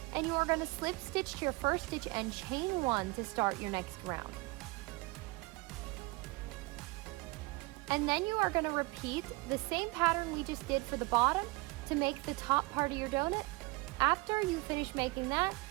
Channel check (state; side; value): quieter; left; 24.5 dB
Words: and you are going to slip stitch to your first stitch and chain 1 to start your next round. And then you are going to repeat the same pattern we just did for the bottom to make the top part of your donut. After you finish making that,